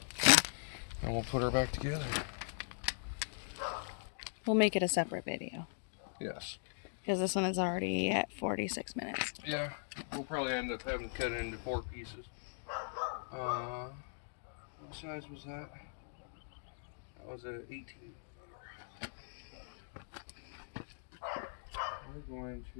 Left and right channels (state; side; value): silent; right; digital silence